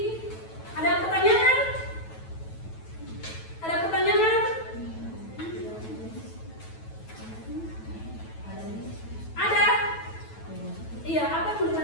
Ada pertanyaan? Ada pertanyaan? Ada? Iya, apa yang mau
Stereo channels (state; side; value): late; right; 9.2 ms